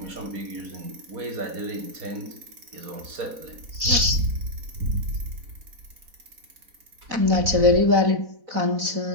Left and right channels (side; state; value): left; late; 4.0 ms